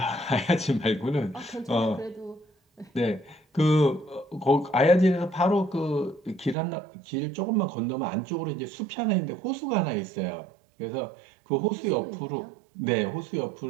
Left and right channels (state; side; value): drops out; left; at 6.6 s